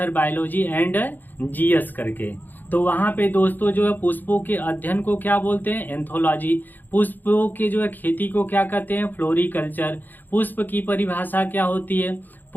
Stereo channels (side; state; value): right; late; 0.088 ms